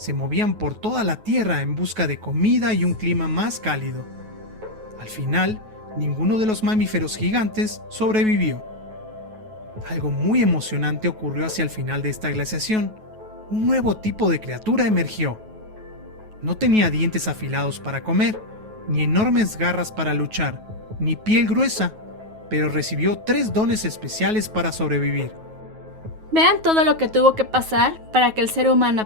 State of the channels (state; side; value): late; left; 9.3 ms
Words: movían por toda la Tierra en busca de comida y un clima más cálido. Al final, ninguno de los mamíferos gigantes sobrevivió. Algo muy emocionante ocurrió hacia el final de esta glaciación. Un nuevo tipo de criatura emergió. No tenía dientes afilados para comer, ni enormes garras para luchar, ni piel gruesa, pero recibió 3 dones especiales para sobrevivir. Vean todo lo que tuvo que pasar para que el ser humano